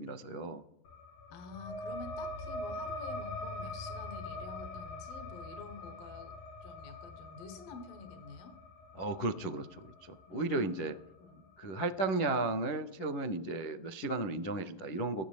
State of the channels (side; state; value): right; late; 10 ms